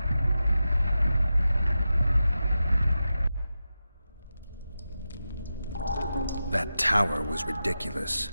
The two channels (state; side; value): inverted; both; correlation -0.91